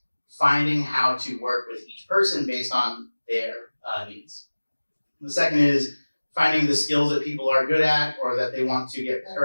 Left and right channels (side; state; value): both; inverted; correlation -1.00